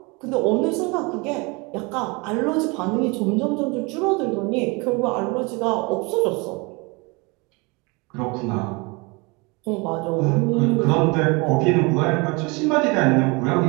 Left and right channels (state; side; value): quieter; left; 27.9 dB